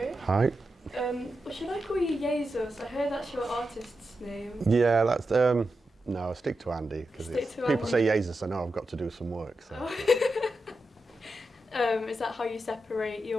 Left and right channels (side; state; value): both; normal; correlation 0.89